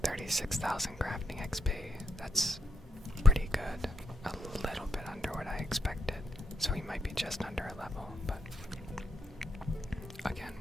36,000 crafting XP. That's pretty good. A little bit under what I expected. So we might be just under a level, but again,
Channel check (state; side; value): normal; both; correlation 0.79